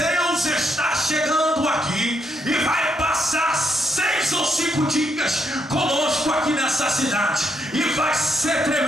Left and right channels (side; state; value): both; normal; correlation 0.77